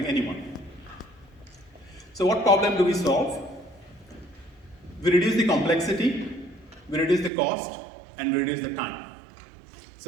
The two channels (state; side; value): drops out; left; at 7.3 s